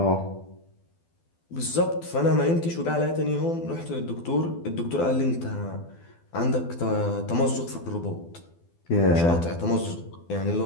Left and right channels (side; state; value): right; late; 12 ms